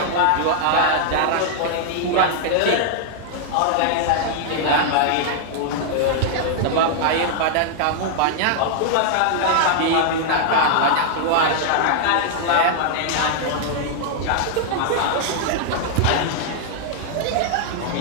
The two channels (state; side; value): different; both; correlation -0.01